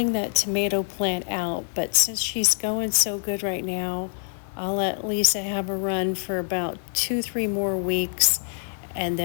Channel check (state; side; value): silent; right; digital silence